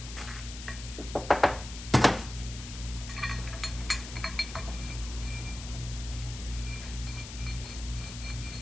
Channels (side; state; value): left; noise; hiss, 11 dB below the sound